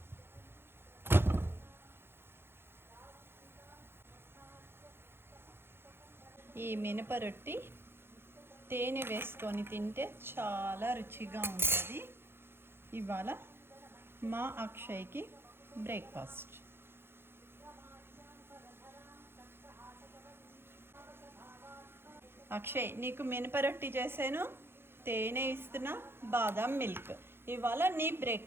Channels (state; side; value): late; left; 0.11 ms